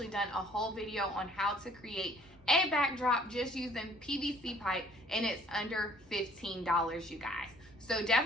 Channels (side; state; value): both; normal; correlation 0.58